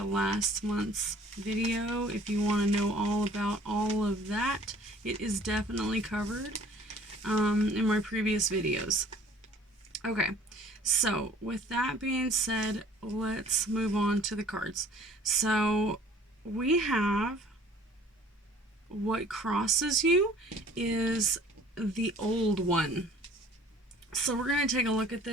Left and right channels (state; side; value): normal; both; correlation 0.52